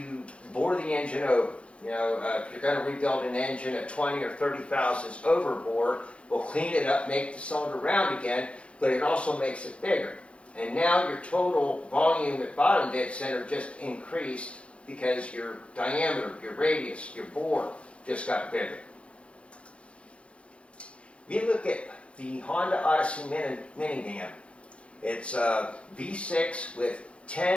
bore the engine over, You know, if you're going to rebuild an engine at 20 or 30 thousandths overbore, we'll clean it up, make the cylinder round again, but it also makes it bigger. And now your total volume at bottom dead center just increased because your diameter, your radius, your bore just got bigger. We look at the Honda Odyssey minivan. It's a V6 with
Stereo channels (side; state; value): right; late; 0.060 ms